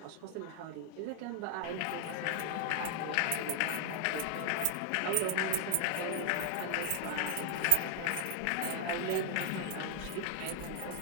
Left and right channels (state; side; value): different; both; correlation 0.01